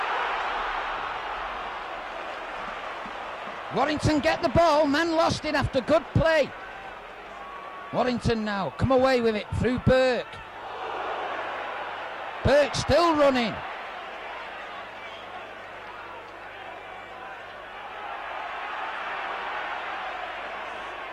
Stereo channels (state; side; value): identical; both; correlation 1.00